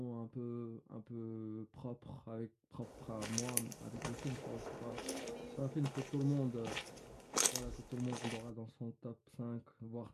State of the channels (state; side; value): identical; both; correlation 1.00